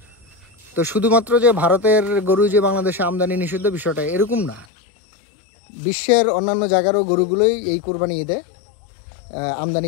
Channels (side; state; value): right; drops out; at 4.7 s